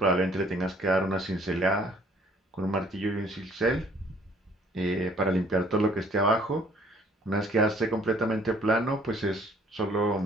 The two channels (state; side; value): normal; both; correlation 0.59